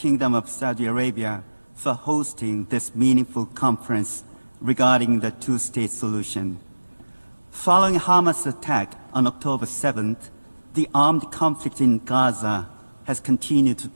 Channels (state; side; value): inverted; both; correlation -1.00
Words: of Saudi Arabia for hosting this meaningful conference regarding the two-state solution. Following Hamas' attack on October 7th, the armed conflict in Gaza has continued